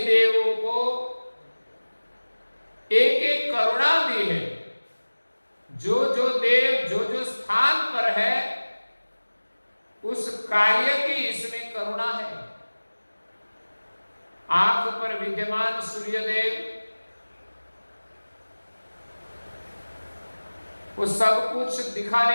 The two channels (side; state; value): both; inverted; correlation -1.00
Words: देवों को एक एक करुणा दी है। जो जो देव जो जो स्थान पर है उस कार्य की इसमें करुणा है। आंख पर विद्यमान सूर्यदेव वो सब कुछ